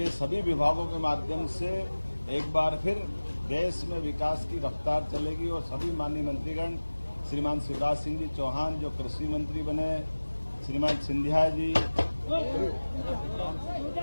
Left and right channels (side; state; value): both; inverted; correlation -1.00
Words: सभी विभागों के माध्यम से एक बार फिर देश में विकास की रफ्तार चलेगी और सभी माननीय मंत्रीगण श्रीमान शिवराज सिंह जी चौहान जो कृषि मंत्री बने, श्रीमान सिंधिया जी